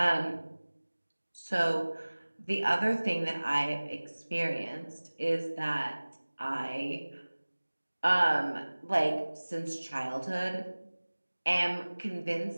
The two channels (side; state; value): both; inverted; correlation -1.00